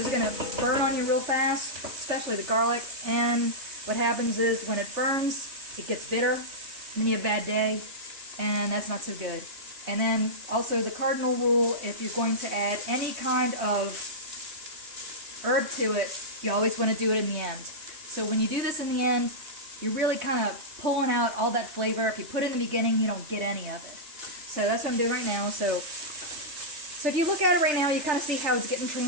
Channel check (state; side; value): late; left; 3.3 ms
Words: going to burn on you real fast, especially the garlic. And what happens is when it burns, it gets bitter, and then you have a bad day, and that's not so good. And then also the cardinal rule, if you're going to add any kind of herb to it, you always want to do it in the end. So when you do this in the end, you're really kind of pulling out all that flavor. If you put it in the beginning, you don't get any of it. So that's what I'm doing right now. So if you look at it right now, you kind of see how it's getting